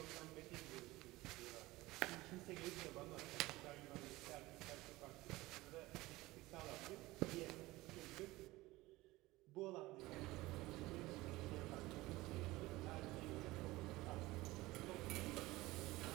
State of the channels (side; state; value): left; quieter; 19.4 dB